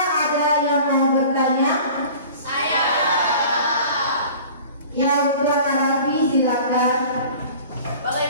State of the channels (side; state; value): both; inverted; correlation -0.43